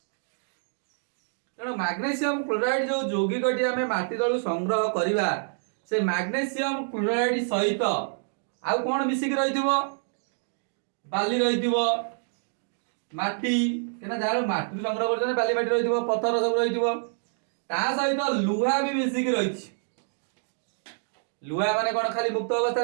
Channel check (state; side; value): silent; left; digital silence